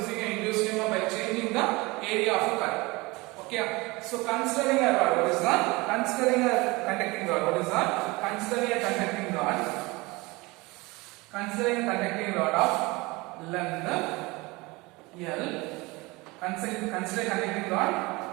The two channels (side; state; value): left; quieter; 23.6 dB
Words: an induced EMF by changing the area of a coil. Okay, so considering a rod, what is that? Considering a conducting rod, what is that? Considering a conducting rod. Considering a conducting rod of length L. Considering conducting rod